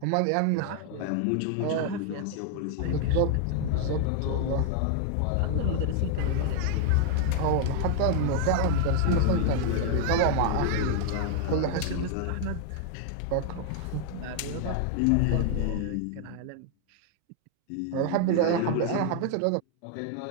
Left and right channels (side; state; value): both; different; correlation 0.00